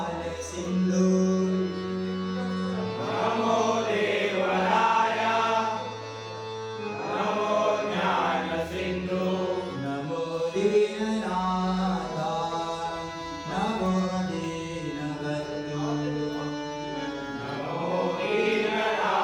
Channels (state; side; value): identical; both; correlation 1.00